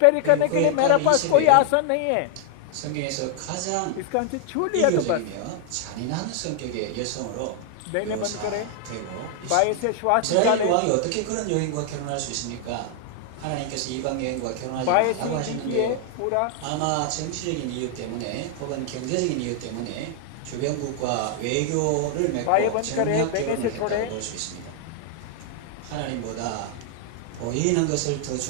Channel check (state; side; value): different; both; correlation 0.00